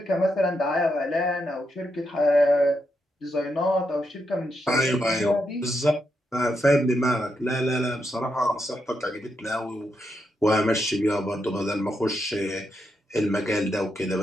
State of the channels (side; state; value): both; normal; correlation 0.82